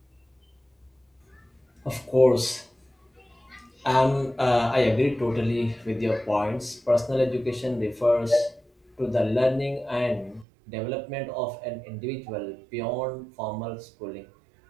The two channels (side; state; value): left; drops out; at 10.5 s